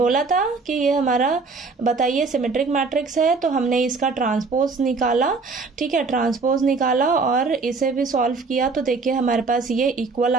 था कि ये हमारा बताइए सिमेट्रिक मैट्रिक्स है, तो हमने इसका ट्रांसपोज निकाला। ठीक है, ट्रांसपोज निकाला और इसे भी सॉल्व किया तो देखिए हमारे पास ये इक्वल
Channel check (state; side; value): quieter; left; 4.2 dB